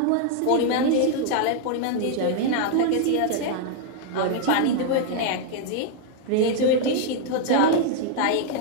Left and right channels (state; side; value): different; both; correlation 0.00